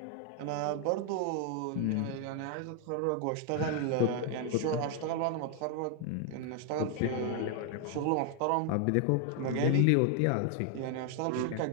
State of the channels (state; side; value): different; both; correlation 0.00